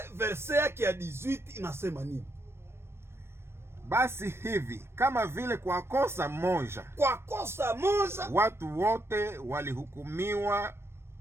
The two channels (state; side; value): late; left; 0.12 ms